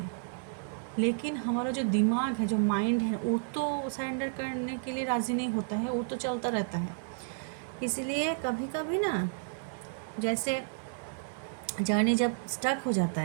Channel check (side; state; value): left; silent; digital silence